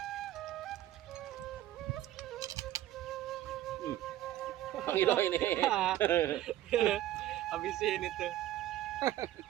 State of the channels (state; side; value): quieter; left; 13.7 dB